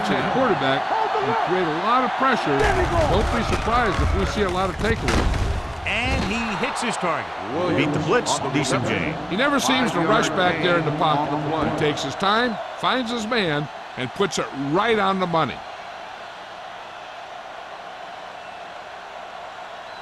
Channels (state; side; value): identical; both; correlation 1.00